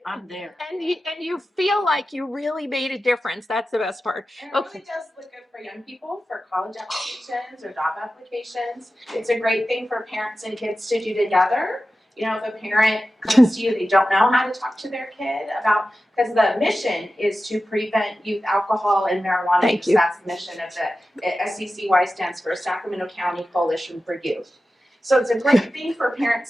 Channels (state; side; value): normal; both; correlation 0.94